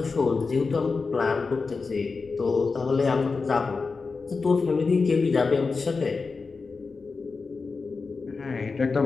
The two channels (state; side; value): quieter; right; 4.4 dB